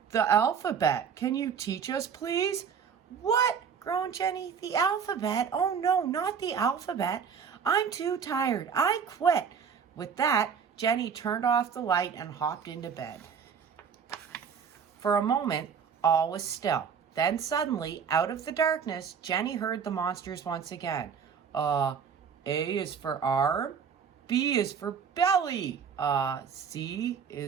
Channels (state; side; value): quieter; left; 6.8 dB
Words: alphabet. Can you teach us, please? What? Groaned Jenny. The alphabet? Oh no, not the alphabet. I'm too tired. I quit. With that, Jenny turned off the light and hopped into bed. For a moment, all was still. Then suddenly, out of the darkness, Jenny heard the monsters once again. A is for arm, B is for belly, C